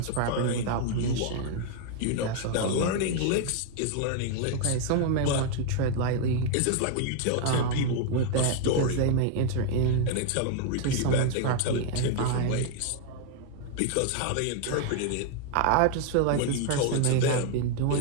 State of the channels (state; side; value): different; both; correlation 0.00